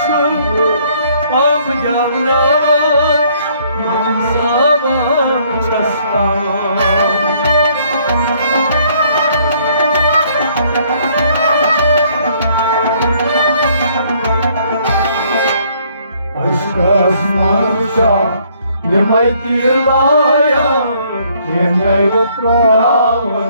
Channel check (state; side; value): inverted; both; correlation -0.64